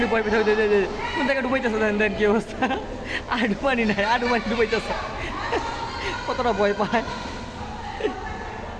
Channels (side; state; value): both; identical; correlation 1.00